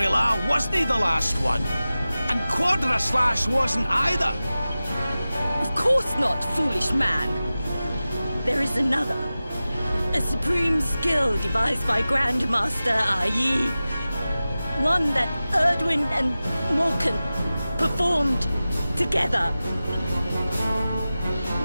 wasn't the last one? And Quadra Slash wasn't either? Of course not, foolish man. There is another. A supreme skill devised by Grandmaster i.e. one that Erdwin and Morkan performed together.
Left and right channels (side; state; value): both; inverted; correlation -0.96